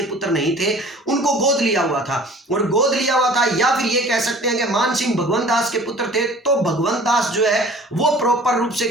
पुत्र नहीं थे, उनको गोद लिया हुआ था, और गोद लिया हुआ था, या फिर ये कह सकते हैं कि मानसिंह भगवंत दास के पुत्र थे। तो भगवंत दास जो है वो प्रॉपर रूप से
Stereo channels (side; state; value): both; normal; correlation 0.47